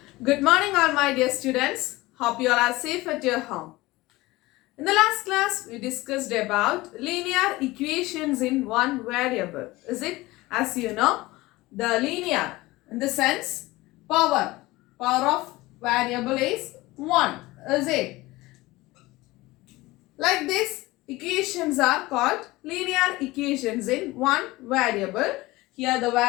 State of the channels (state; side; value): quieter; right; 20.0 dB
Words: Good morning all my dear students. Hope you all are safe at your home. In the last class, we discussed about linear equations in one variable. Is it? As you know, the linear in the sense power of variable is 1. Is it? Like this, equations are called linear equations in one variable. Here the